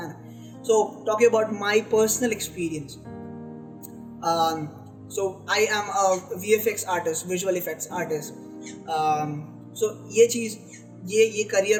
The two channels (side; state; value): both; identical; correlation 1.00